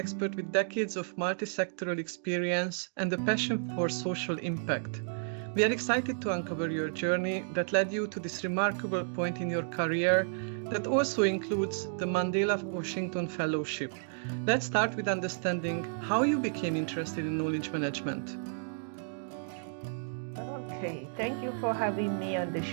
with decades of multi-sectoral experience and a passion for social impact. We are excited to uncover your journey that led you to this remarkable point in your career that also includes the Mandela Washington Fellowship. Let's start with understanding how you became interested in knowledge management. Okay, thank you for having me on the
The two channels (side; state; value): left; silent; digital silence